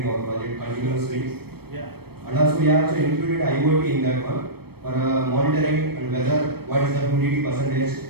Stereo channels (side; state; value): left; late; 0.96 ms